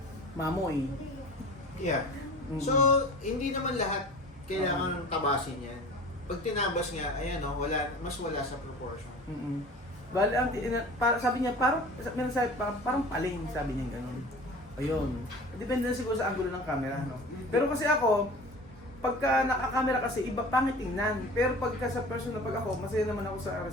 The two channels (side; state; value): both; normal; correlation 0.40